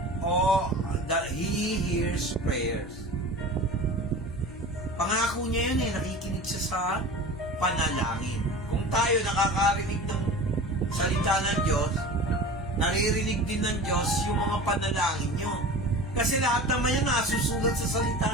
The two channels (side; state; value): left; noise; hum, 16 dB below the sound